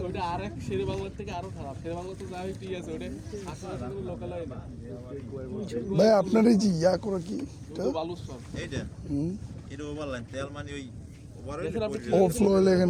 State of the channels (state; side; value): identical; both; correlation 1.00